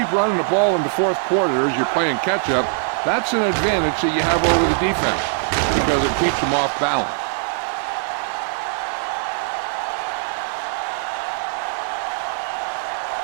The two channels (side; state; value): left; silent; digital silence